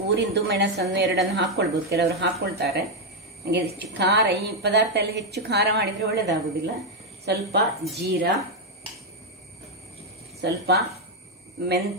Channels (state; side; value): normal; both; correlation 0.02